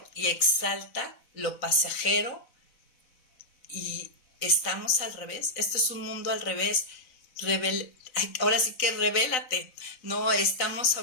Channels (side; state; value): right; late; 4.0 ms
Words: y exalta lo pasajero, y estamos al revés. Este es un mundo al revés. Ahora sí que revélate. No estamos